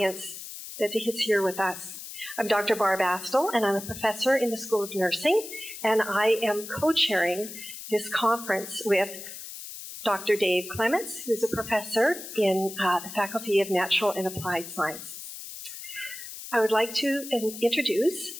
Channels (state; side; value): noise; left; hiss, 11 dB below the sound